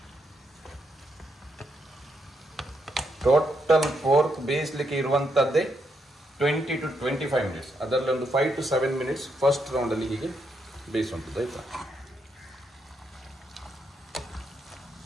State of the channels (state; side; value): normal; both; correlation 0.79